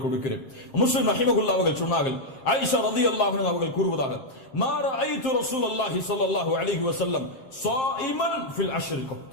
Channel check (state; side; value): late; right; 7.6 ms